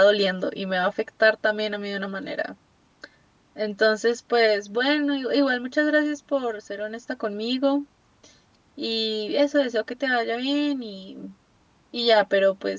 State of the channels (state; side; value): identical; both; correlation 1.00